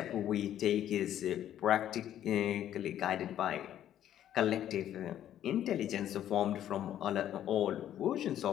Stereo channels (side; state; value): right; quieter; 11.2 dB